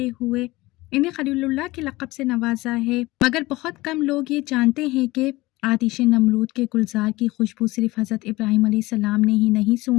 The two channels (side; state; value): right; quieter; 20.0 dB